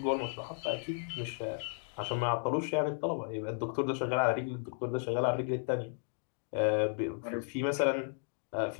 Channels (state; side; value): silent; right; 55 dB below the other